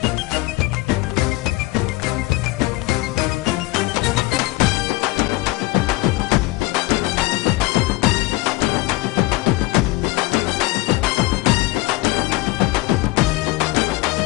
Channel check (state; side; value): quieter; right; 19.5 dB